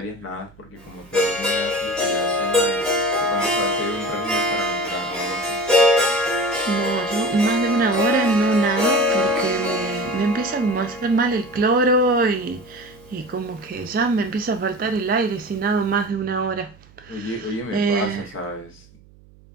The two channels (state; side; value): noise; right; hum, 26 dB below the sound